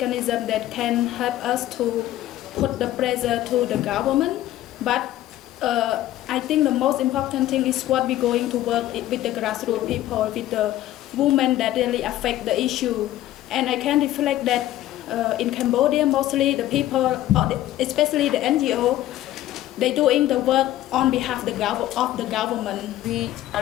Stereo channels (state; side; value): quieter; right; 14.1 dB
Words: that can help us to put the pressure to the government, but I think the most important thing is what we're going to work with the grassroots people, with the women that really affect the issue. And I can reflect that in Cambodia, mostly the people, especially the NGO, they're doing the work on behalf of the government. We